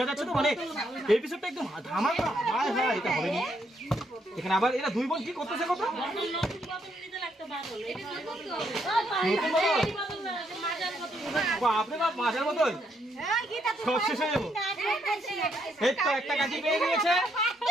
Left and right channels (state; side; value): normal; both; correlation 0.74